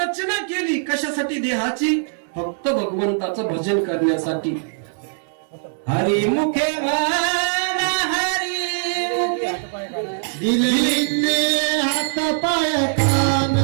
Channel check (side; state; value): left; silent; digital silence